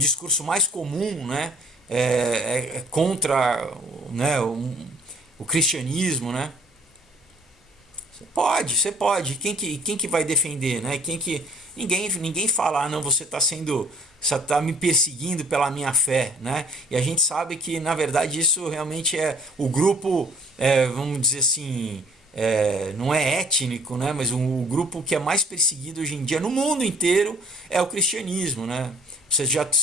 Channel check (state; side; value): normal; both; correlation 0.58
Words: mais comum, né? É contra, né, o cristianismo, né? Você pode. Quem que vai defender, né? Ninguém fala, ah, não, você está me perseguindo pela minha fé, né? E a gente sabe que na verdade isso realmente é o grupo, vamos dizer assim, não é étnico, né? Mas o grupo que é mais perseguido hoje em dia no mundo inteiro é o cristianismo, né?